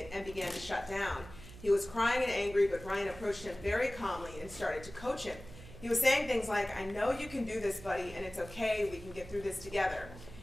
and began to shut down. He was crying and angry, but Ryan approached him very calmly and started to coach him. He was saying things like, "I know you can do this, buddy, and it's okay, we can get through this together."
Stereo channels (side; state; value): right; noise; hum, 16 dB below the sound